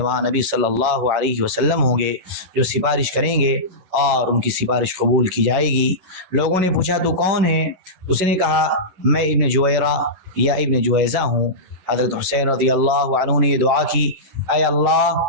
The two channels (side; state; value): left; late; 10 ms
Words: نبی صلی اللہ علیہ وسلم ہوں گے جو سفارش کریں گے اور ان کی سفارش قبول کی جائے گی۔ لوگوں نے پوچھا تو کون ہے؟ اس نے کہا میں ابن جویرہ یا ابن جویزہ ہوں۔ حضرت حسین رضی اللہ عنہ نے یہ دعا کی اے اللہ